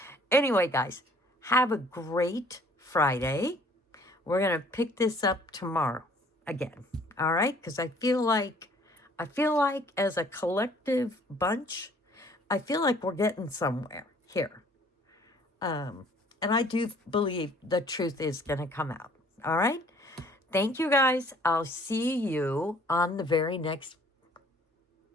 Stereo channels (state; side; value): normal; both; correlation 0.57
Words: anyway, guys, have a great Friday. We're going to pick this up tomorrow again. All right? Because I feel like as a collective bunch, I feel like we're getting somewhere here. And I do believe the truth is going to come out. All right? Thank you, guys. I'll see you on the very next